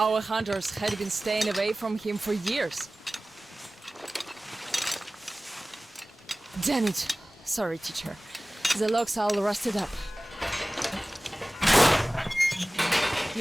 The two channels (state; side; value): normal; both; correlation 0.98